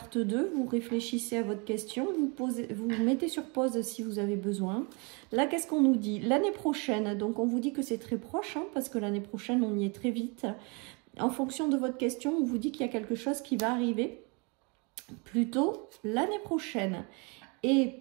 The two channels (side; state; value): left; quieter; 31.8 dB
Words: 2, vous réfléchissez à votre question, vous mettez sur pause si vous avez besoin. Là, qu'est-ce qu'on nous dit? L'année prochaine, donc on vous dit que c'est très proche, hein, parce que l'année prochaine, on y est très vite. En fonction de votre question, on vous dit qu'il y a quelque chose qui va arriver plutôt l'année prochaine. Et